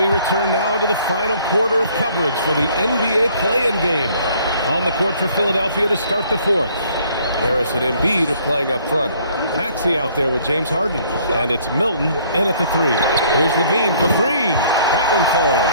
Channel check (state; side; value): inverted; both; correlation -0.60